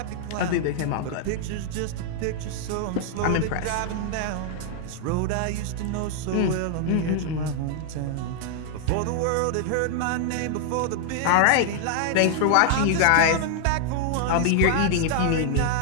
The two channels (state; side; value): different; both; correlation 0.00